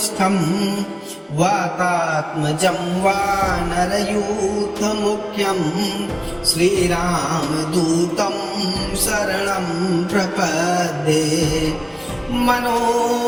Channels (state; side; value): identical; both; correlation 1.00